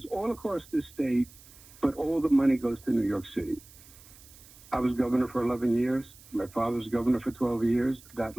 all across the state, but all the money goes to New York City. I was governor for 11 years. My father was governor for 12 years. That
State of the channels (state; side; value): noise; right; hiss, 22 dB below the sound